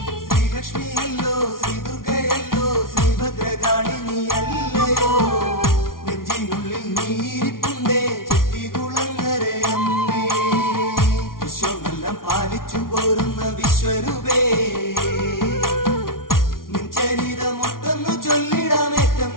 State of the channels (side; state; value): right; late; 0.92 ms